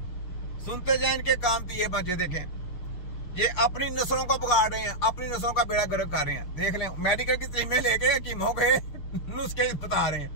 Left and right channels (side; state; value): right; late; 6.6 ms